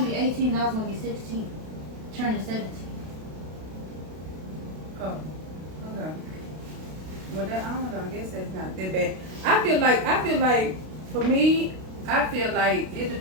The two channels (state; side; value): late; left; 32 ms